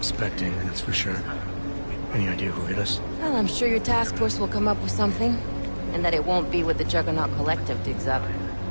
that's for sure. Any idea who hit us? Well, I'm sure your task force will come up with something. And that it won't be what the Juggernaut Collective digs up.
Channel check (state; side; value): inverted; both; correlation -1.00